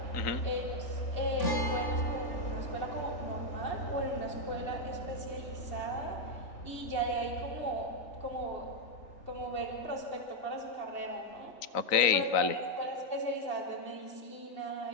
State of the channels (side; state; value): right; late; 3.9 ms